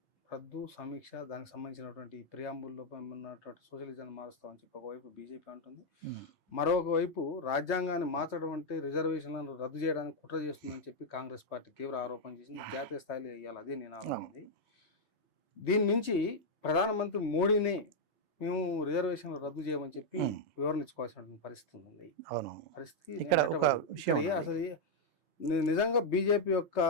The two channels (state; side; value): normal; both; correlation -0.01